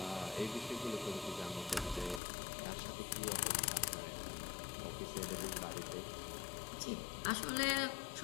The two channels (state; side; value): drops out; right; at 2.2 s